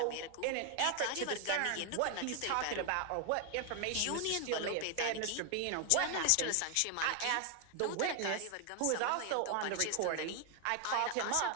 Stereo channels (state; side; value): different; both; correlation 0.00